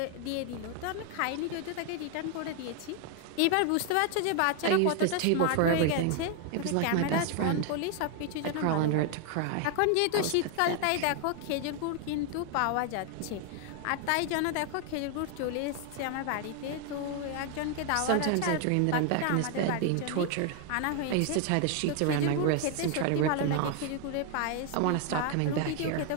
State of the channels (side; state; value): both; different; correlation 0.00